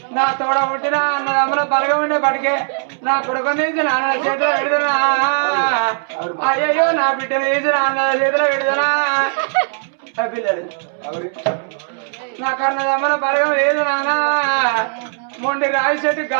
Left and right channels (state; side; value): silent; left; 67 dB below the other